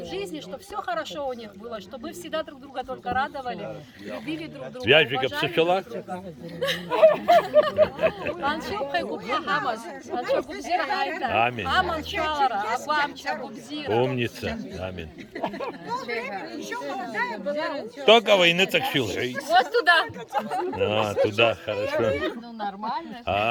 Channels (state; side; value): identical; both; correlation 1.00